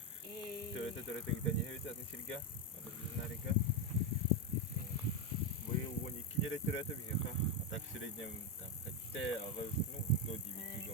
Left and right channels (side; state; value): both; normal; correlation 0.08